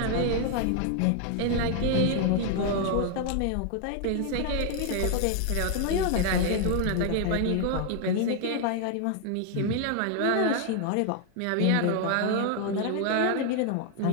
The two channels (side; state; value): both; different; correlation 0.00